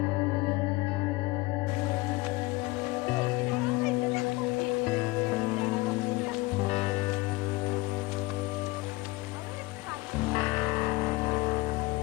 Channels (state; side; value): quieter; right; 21.9 dB